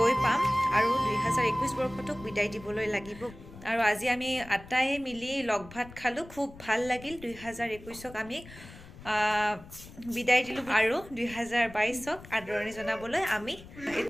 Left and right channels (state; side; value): noise; left; rumble, 18 dB below the sound